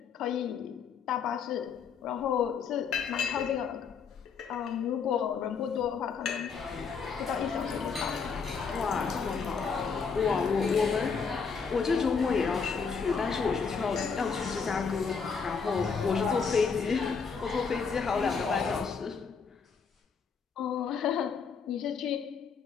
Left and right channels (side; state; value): right; quieter; 5.8 dB